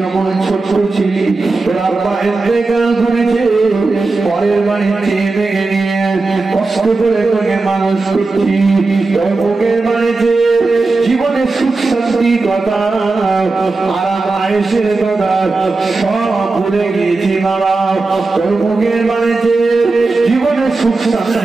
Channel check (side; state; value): left; quieter; 3.6 dB